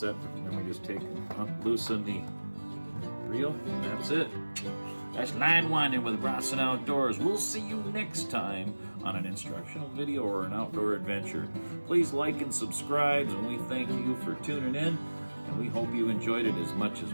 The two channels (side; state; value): both; inverted; correlation -1.00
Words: Then we just loosen the reel, and that's it. That's line winding with Bronson Outdoors. We'll see you next time on an instructional video or an outdoor adventure. Please like and subscribe, and we thank you for tuning in, and we hope you enjoyed it as much